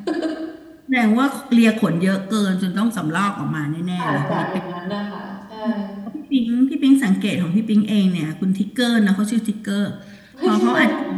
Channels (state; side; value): identical; both; correlation 1.00